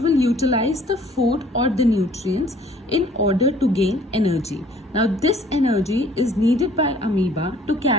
will utilize the food or the nutrients in order to gain energy. Now this energy is needed by amoeba to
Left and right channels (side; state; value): both; normal; correlation 0.56